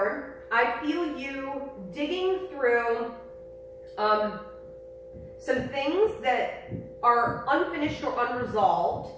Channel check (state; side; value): identical; both; correlation 1.00